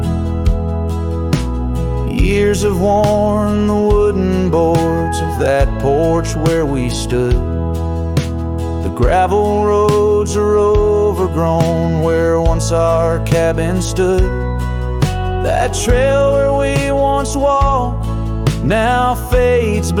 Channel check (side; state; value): both; identical; correlation 1.00